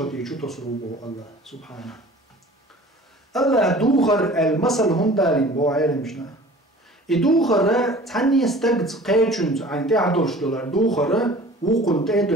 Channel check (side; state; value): both; normal; correlation 0.45